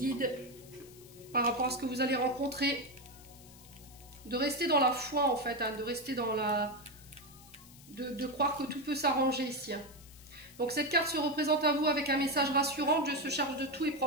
par rapport à ce que vous allez rencontrer, de rester dans la foi en fait, hein, de rester dans la... de croire que tout peut s'arranger ici. Hein. Donc cette carte se représente à vous avec un message rassurant. Dieu se charge de tout et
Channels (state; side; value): noise; left; hiss, 21 dB below the sound